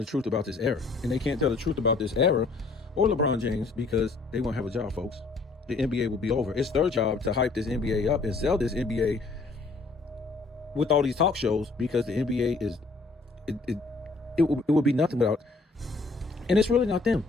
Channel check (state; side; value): quieter; right; 3.8 dB